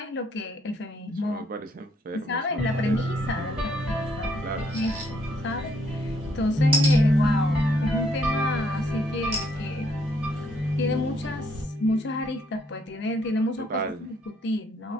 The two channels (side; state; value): both; normal; correlation 0.69